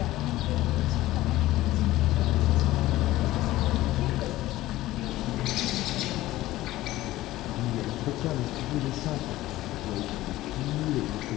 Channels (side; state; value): right; quieter; 16.3 dB